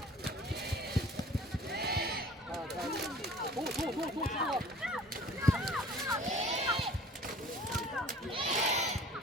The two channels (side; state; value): both; normal; correlation 0.48